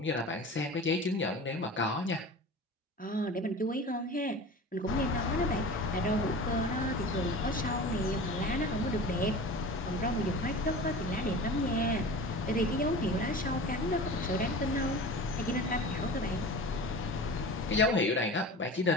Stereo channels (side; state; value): both; normal; correlation 0.35